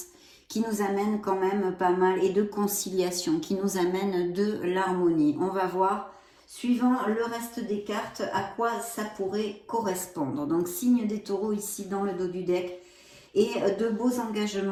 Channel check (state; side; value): identical; both; correlation 1.00